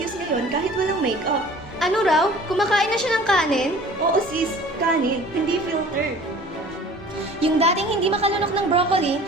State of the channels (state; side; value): normal; both; correlation 0.47